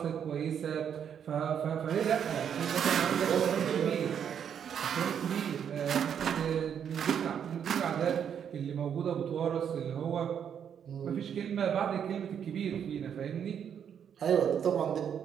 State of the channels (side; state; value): left; quieter; 8.3 dB